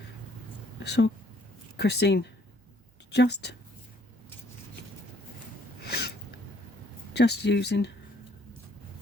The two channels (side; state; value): both; normal; correlation 0.64